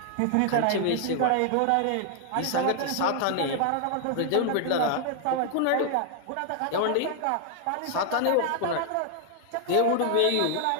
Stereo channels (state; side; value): different; both; correlation 0.00